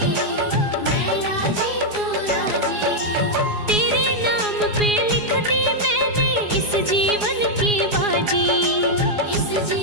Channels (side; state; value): left; late; 4.8 ms